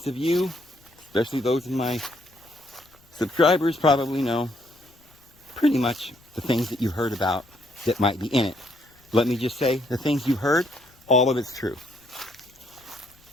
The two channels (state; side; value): noise; left; rumble, 30 dB below the sound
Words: of you, especially those of my subscribers, probably know pretty much the things that you heard about that might be in it. Let me just say, the things you heard, all of it's true.